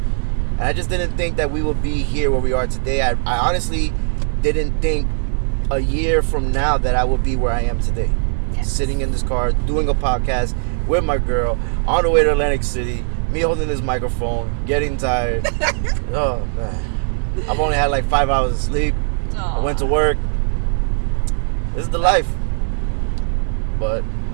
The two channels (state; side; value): silent; left; digital silence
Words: And I just didn't think that we would be here where we are today. I honestly didn't think a year from now that I would be where I am today. Yes. Sitting in this car, doing a podcast with my girl, on the way to Atlantic City, me holding this microphone, getting tired. Oh, man. I've only had like 5 hours of sleep. Aww. I went to work. This is the life. But